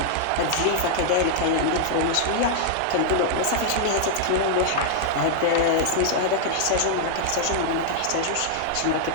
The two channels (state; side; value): different; both; correlation -0.01